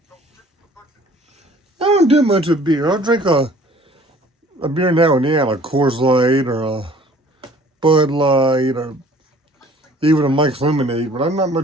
I don't do much of beer. I'll drink a beer now and then, a Coors Light or a Bud Light or even a Mike's Lemonade, but I'm not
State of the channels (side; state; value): both; normal; correlation 0.52